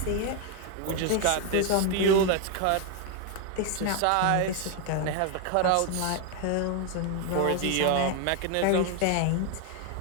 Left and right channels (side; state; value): both; different; correlation 0.01